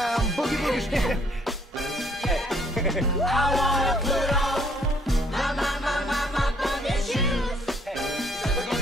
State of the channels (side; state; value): both; normal; correlation 0.64